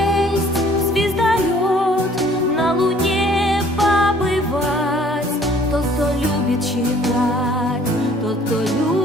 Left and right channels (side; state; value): both; normal; correlation 0.56